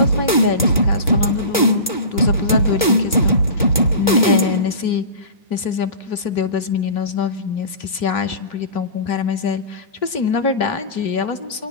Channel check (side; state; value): both; inverted; correlation -0.33